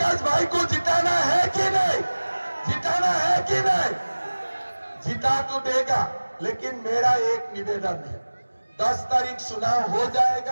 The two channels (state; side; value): inverted; both; correlation -1.00